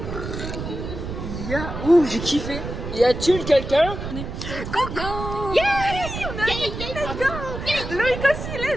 Ouh, j'ai kiffé. Y a-t-il quelqu'un? Coucou. Yeah, let's go. Loïc aussi,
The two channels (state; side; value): noise; right; rumble, 7 dB below the sound